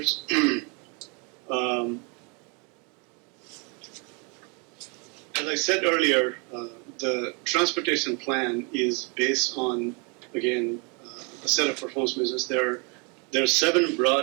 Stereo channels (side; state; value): left; quieter; 33.1 dB